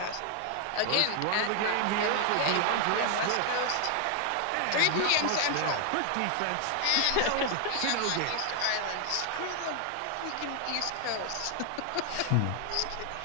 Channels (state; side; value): different; both; correlation 0.00